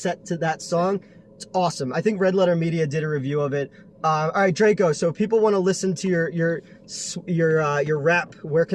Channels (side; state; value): both; identical; correlation 1.00